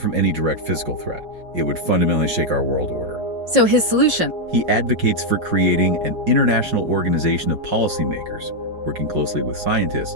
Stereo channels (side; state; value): left; late; 5.5 ms